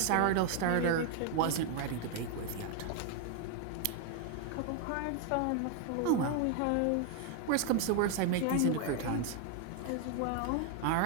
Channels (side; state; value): both; different; correlation 0.00